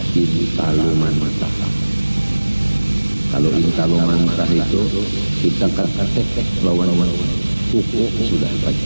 intalu mantah. Kalau intalu mantah itu kita ketek lawan kuku sudah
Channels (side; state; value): both; inverted; correlation -1.00